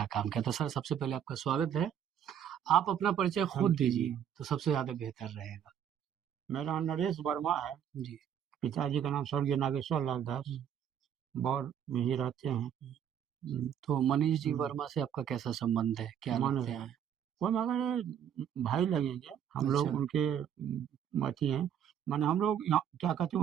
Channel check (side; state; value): left; quieter; 9.2 dB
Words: काम किया। तो सर, सबसे पहले आपका स्वागत है। आप अपना परिचय खुद दीजिए तो सबसे ज्यादा बेहतर रहेगा। मेरा नाम नरेश वर्मा है, जी। पिताजी का नाम स्वर्गीय नागेश्वर लाल दास, बौर में ही रहते हैं। तो मनीष जी वर्मा से आपका कैसा संबंध है, क्या लगते हैं? वो मगर भाई लगेंगे हम लोग, अच्छा, उनके अथी हैं। माने हम लोग क्या कहते